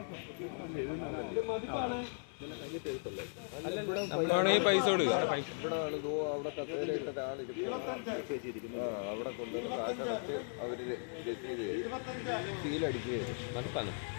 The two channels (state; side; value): silent; right; 53 dB below the other